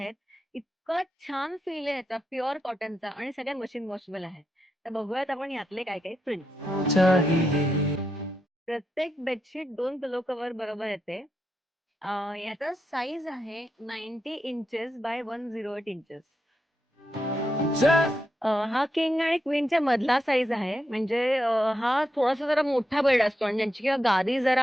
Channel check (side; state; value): both; normal; correlation 0.84